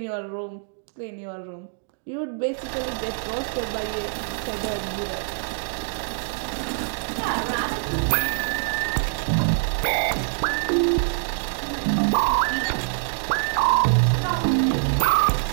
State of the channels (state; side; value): silent; left; 62 dB below the other